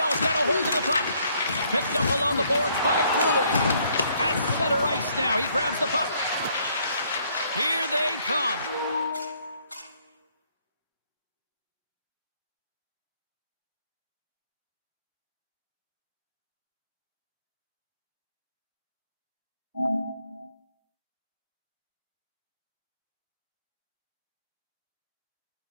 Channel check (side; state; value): both; inverted; correlation -0.66